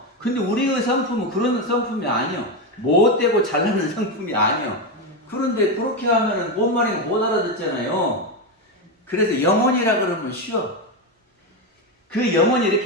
근데 우리의 성품은 그런 성품이 아니요. 못되고 잘나는 성품이 아니요. 그런데 그렇게 하면은 뭔 말인가 못 알아듣잖아요. 그래서 영혼이라 그러면 쉬워. 그 영혼이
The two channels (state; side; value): normal; both; correlation 0.11